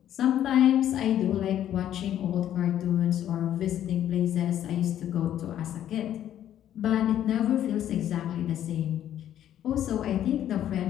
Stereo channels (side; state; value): right; quieter; 11.1 dB